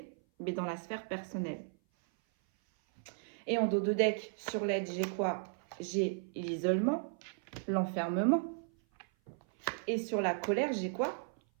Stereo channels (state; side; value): silent; left; 54 dB below the other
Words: mais dans la sphère personnelle. Et en dos de deck, sur l'aide, j'ai quoi? J'ai l'isolement, l'enfermement. Et sur la colère, j'ai quoi?